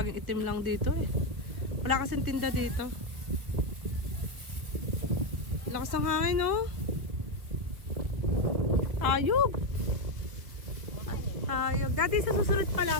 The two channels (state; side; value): late; left; 1.9 ms